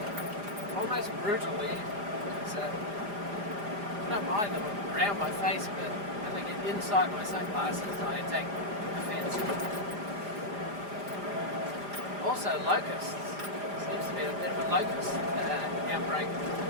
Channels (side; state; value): left; late; 4.8 ms